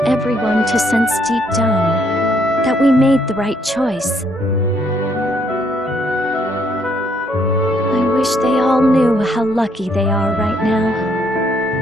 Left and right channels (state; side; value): normal; both; correlation 0.70